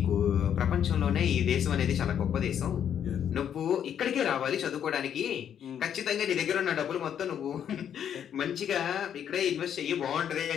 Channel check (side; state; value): right; quieter; 9.1 dB